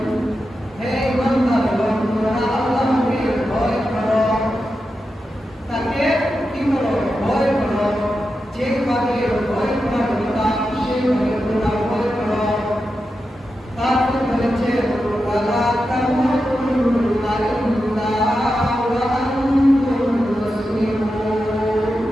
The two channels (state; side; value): normal; both; correlation 0.89